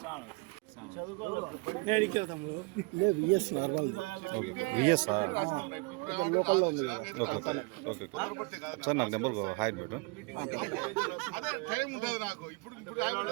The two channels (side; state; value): left; quieter; 29.8 dB